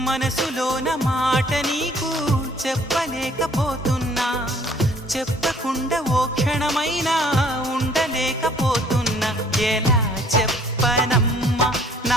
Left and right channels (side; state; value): both; normal; correlation 0.58